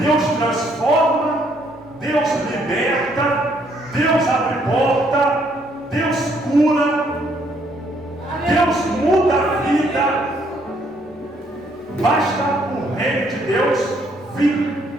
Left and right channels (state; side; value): normal; both; correlation 0.68